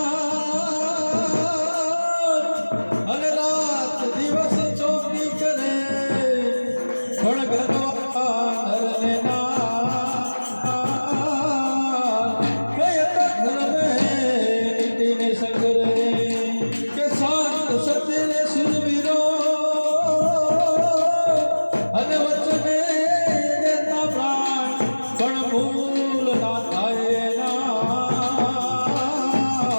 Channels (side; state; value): both; inverted; correlation -1.00